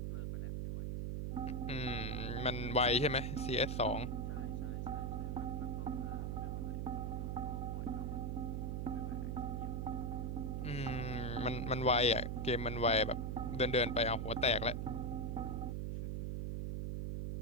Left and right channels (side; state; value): right; noise; hum, 1 dB below the sound